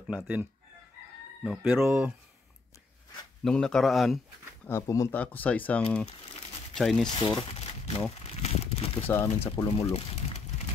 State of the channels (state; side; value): quieter; right; 3.8 dB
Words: natin. No, pero nung nakaraan, pumunta ako sa isang Chinese store, no. Dito sa amin sa Pulumulok.